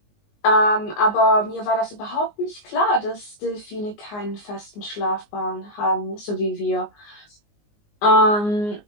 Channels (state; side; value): late; right; 19 ms